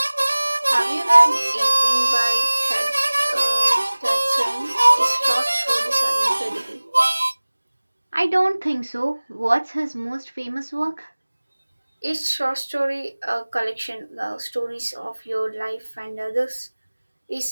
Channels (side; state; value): both; inverted; correlation -1.00